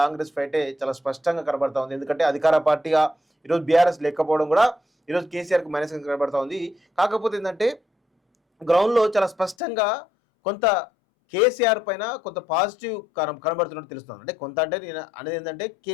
ఫైటే చాలా స్పష్టంగా కనబడతా ఉంది. ఎందుకంటే అధికార పార్టీగా ఈరోజు బీఆర్ఎస్ లేకపోవడం కూడా ఈరోజు కేసీఆర్కి మైనస్గా కనబడతా ఉంది. కాకపోతే ఏంటంటే గ్రౌండ్లో చాలా స్పష్టంగా కొంత కేసీఆర్ పైన కొంత పాజిటివ్ కనబడుతున్నట్టు తెలుస్తుంది. అంటే కొంత అంటే నేను అనేది ఏంటంటే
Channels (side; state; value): right; drops out; at 9.6 s